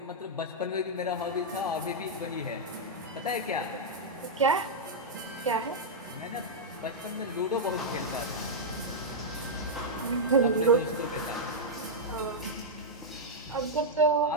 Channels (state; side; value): normal; both; correlation -0.06